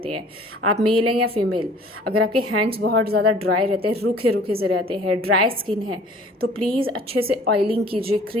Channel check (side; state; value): both; normal; correlation 0.51